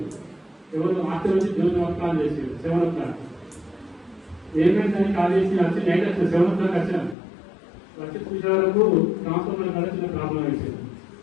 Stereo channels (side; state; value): right; drops out; at 7.2 s